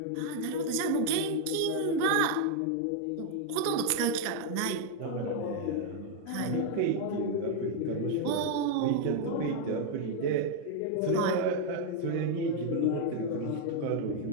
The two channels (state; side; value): different; both; correlation 0.00